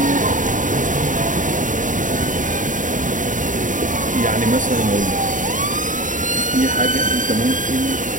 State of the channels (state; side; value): late; left; 0.37 ms